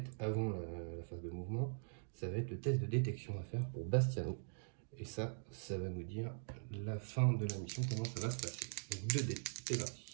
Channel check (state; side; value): silent; left; digital silence